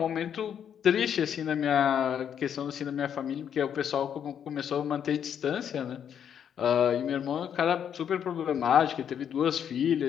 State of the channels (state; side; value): quieter; right; 8.6 dB